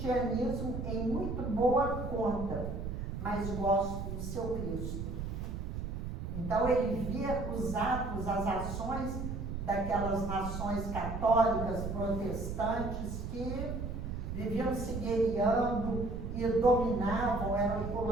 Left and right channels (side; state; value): right; noise; rumble, 5 dB below the sound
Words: em muito boa conta, mas gosto do seu Cristo. Então ele via os atos, as ações daquelas nações católicas, protestantes, que viviam se guerreando e dominavam, eram